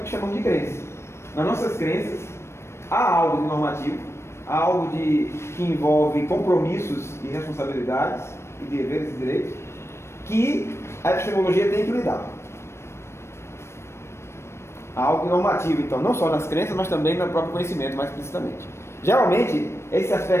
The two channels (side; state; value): right; late; 0.13 ms